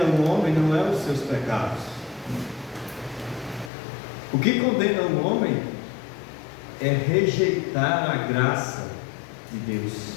o homem não é os seus pecados. O que condena o homem é rejeitar a graça de Deus.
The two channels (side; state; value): right; drops out; at 3.7 s